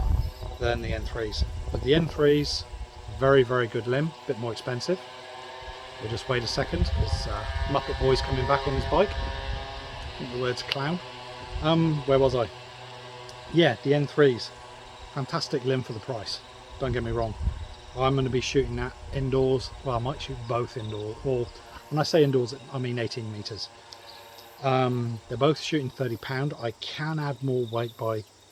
than the N3s. But the N3s, very good limb, a bit more expensive. We'll just wait a second, because Muppet Boy's coming back on his bike. I think the word's clown. Where was I? Yeah, the N3s. Fantastic limb for the price, don't get me wrong. I'm going to be shooting that indoors. Well, I might shoot both indoors, or when I say indoors I mean 18 meters. They're both shooting 30 pound. I can add more weight by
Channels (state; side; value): identical; both; correlation 1.00